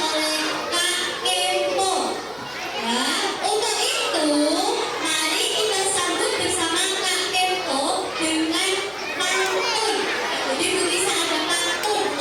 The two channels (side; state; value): right; noise; hum, 28 dB below the sound